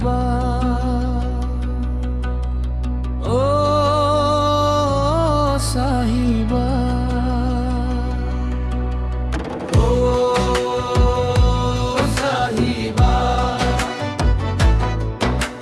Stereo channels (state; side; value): identical; both; correlation 1.00